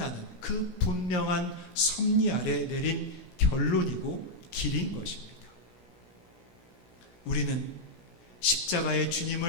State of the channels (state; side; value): late; right; 17 ms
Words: 그 분명한 섭리 아래 내린 결론이고 길인 것입니다. 우리는 십자가의